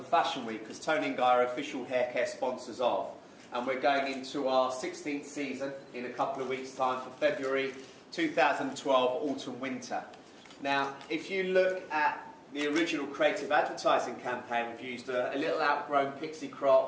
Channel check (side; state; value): both; identical; correlation 1.00